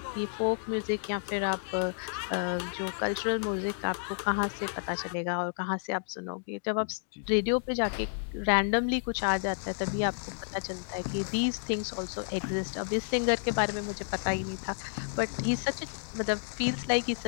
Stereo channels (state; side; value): silent; right; digital silence